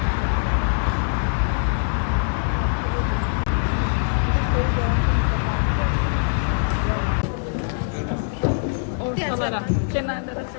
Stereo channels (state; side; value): silent; right; digital silence